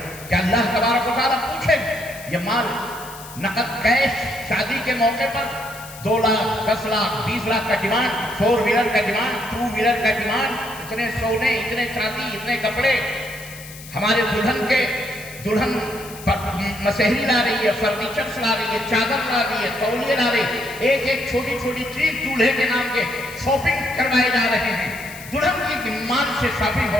کہ اللہ تبارک و تعالیٰ پوچھے یہ مال نقد کیش شادی کے موقع پر 2 لاکھ 10 لاکھ 20 لاکھ کا ڈیمانڈ، 4 ویلر کا ڈیمانڈ، 2 ویلر کا ڈیمانڈ، اتنے سونے، اتنے چاندی، اتنے کپڑے. ہمارے دلہن مسحری لا رہی ہے، فرنیچرز لا رہی ہے، چادر لا رہی ہے، تولیے لا رہی ہے. ایک چھوٹی چھوٹی چیز دولہے کے نام کے شاپنگ کروائے جا رہے ہیں. دلہن کی مال سے شاپنگ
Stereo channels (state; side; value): noise; left; hiss, 16 dB below the sound